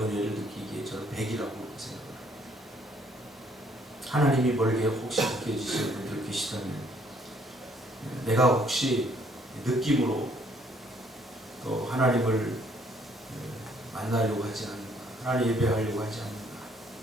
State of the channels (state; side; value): normal; both; correlation 0.65